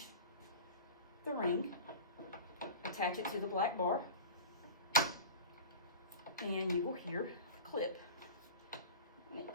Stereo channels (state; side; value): inverted; both; correlation -0.35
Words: the ring, attach it to the black bar, and you will hear a clip. And